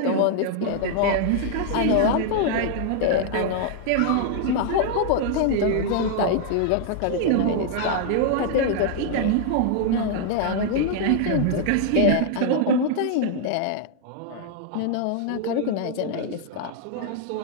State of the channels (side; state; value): both; different; correlation 0.00